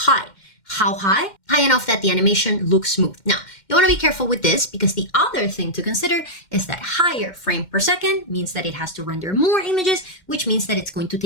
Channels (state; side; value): late; right; 2.1 ms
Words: How high? High enough that the animation looks smooth. Now, you want to be careful with this because the other thing to consider is that higher frame per second means that it has to render more images, which means that it's going to